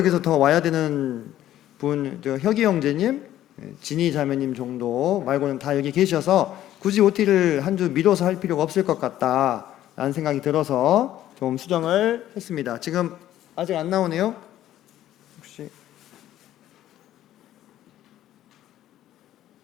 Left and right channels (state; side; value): quieter; right; 12.8 dB